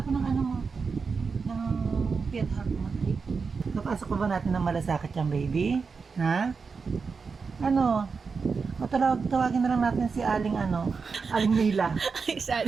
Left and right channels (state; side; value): quieter; left; 5.1 dB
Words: ng ano mo. Ng Fiat Heart mo. Napasok pa ba natin ng malasakit yung baby? Ha? Ano? Tawagin na lang natin si Aling Aling Mila. Ay,